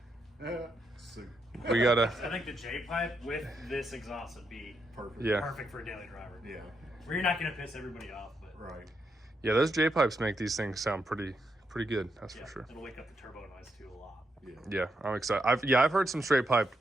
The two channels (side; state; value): both; normal; correlation 0.81